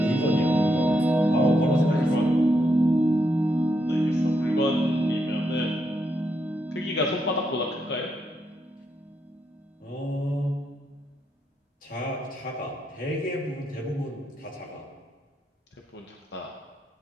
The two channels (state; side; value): normal; both; correlation 0.80